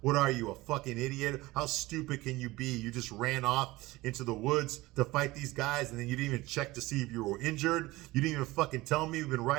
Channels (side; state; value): left; quieter; 19.6 dB